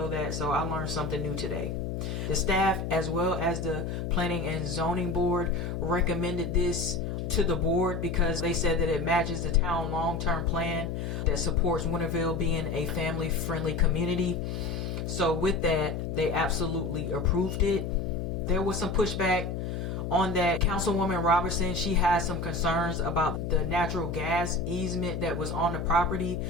that, so I learned something new today. The staff, as well as the planning and zoning board, recommended this to the board because they said that it matches the town long-term plan that supports Winterville being a family-friendly community. So with that, they absolutely approved it. There was some pushback on that. Councilwoman Robertson, she has some concerns about the natural gas easement that was on the property.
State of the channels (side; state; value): left; noise; hum, 3 dB below the sound